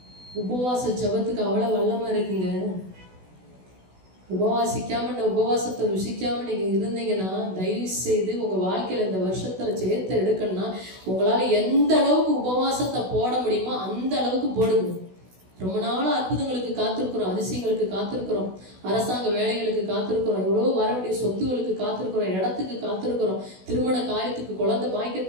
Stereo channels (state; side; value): late; left; 16 ms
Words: உபவாச ஜெபத்துக்கு அவ்வளவு வல்லமா இருக்குங்க. உபவாசிக்காம, இந்த உபவாசத்தை ருசிக்காம நீங்க இருந்தீங்கன்னா, தயவு செய்து உங்க வாழ்க்கையில இந்த வருஷத்துல ஜெயத்தை எடுக்கணும்னா, உங்களால எந்த அளவுக்கு உபவாசத்தை போட முடியுமோ அந்த அளவுக்கு போடுங்க. ரொம்ப நாள் அற்புதங்களுக்கு காத்திருக்கிறோம், அதிசயங்களுக்கு காத்திருக்கிறோம், அரசாங்க வேலைகளுக்கு காத்திருக்கிறோம், எவ்வளோ வர வேண்டிய சொத்துகளுக்கு காத்திருக்கிறோம், இடத்துக்கு காத்திருக்கிறோம், திருமண காரியத்துக்கு, குழந்தை